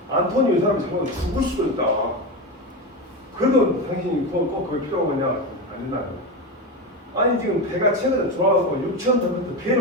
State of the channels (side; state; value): both; normal; correlation 0.17